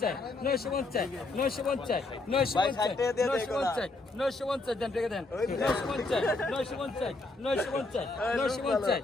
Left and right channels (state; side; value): quieter; right; 3.2 dB